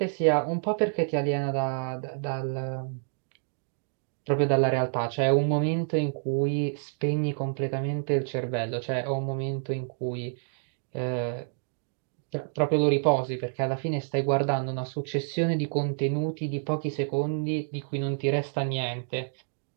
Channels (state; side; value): silent; left; digital silence